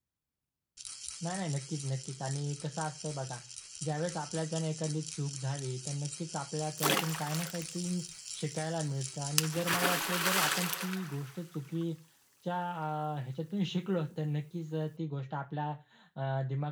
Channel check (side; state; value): both; identical; correlation 1.00